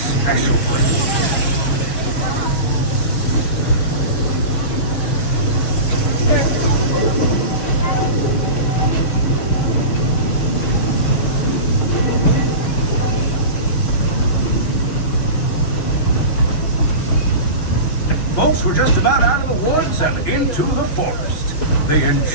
place. Folks, we're just about out of the woods and into the forest. The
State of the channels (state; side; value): late; right; 6.2 ms